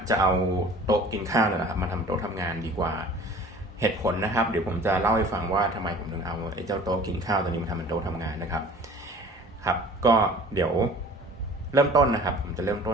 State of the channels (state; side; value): normal; both; correlation 0.46